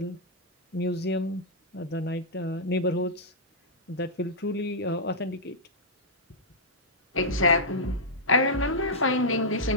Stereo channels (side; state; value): both; normal; correlation -0.08